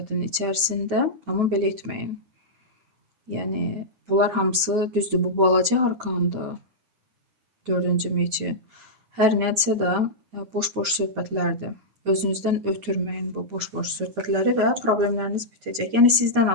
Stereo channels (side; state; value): left; late; 9.7 ms